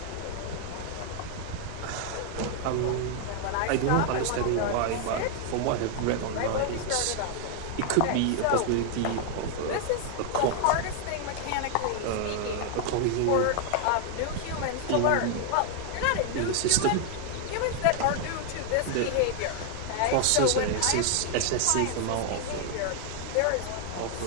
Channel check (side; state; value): both; different; correlation 0.00